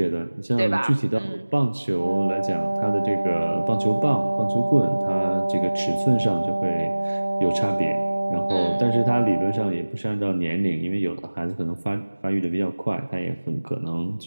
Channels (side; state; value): both; inverted; correlation -1.00